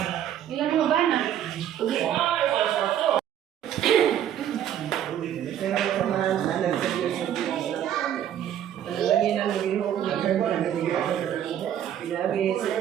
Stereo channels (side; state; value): left; quieter; 10.5 dB